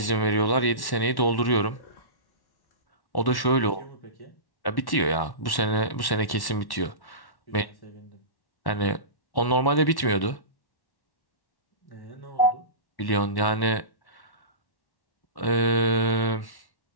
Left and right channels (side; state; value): right; late; 1.1 ms